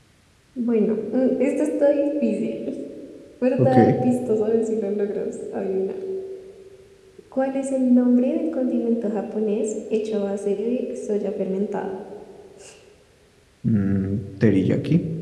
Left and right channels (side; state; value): both; identical; correlation 1.00